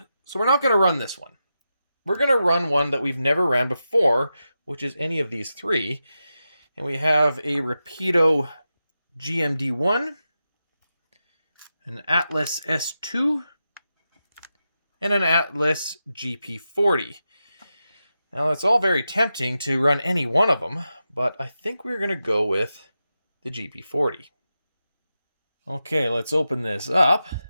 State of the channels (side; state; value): both; inverted; correlation -0.90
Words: so we're not going to run this one. We're going to run one that we've never ran before, which is any of these three. And we have a Rapido GMD1, an Atlas S2, and an Atlas GP40. Now, it's all very tempting to run any one of them, but I think we're going to go with the GP40. Okay, let's open this up.